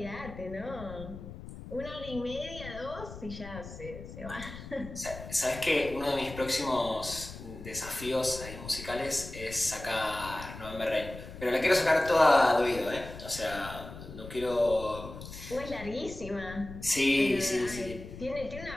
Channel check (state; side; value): noise; left; rumble, 12 dB below the sound